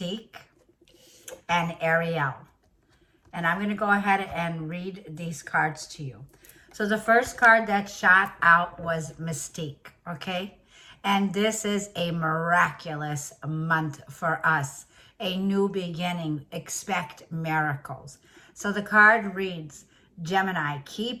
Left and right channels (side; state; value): both; identical; correlation 1.00